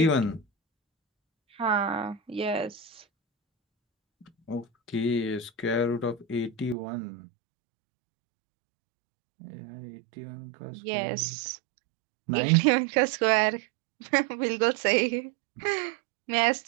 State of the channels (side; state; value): left; drops out; at 6.8 s